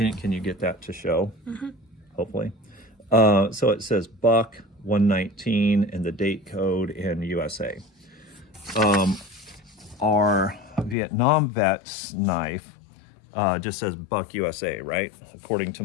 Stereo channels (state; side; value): drops out; right; at 11.0 s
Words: you get that to show? Hopefully. So it says Buck 119 and the date code in USA. Our Vietnam vet's knife just says Buck USA, right? According to